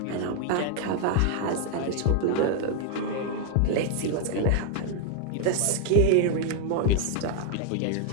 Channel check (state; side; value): different; both; correlation 0.00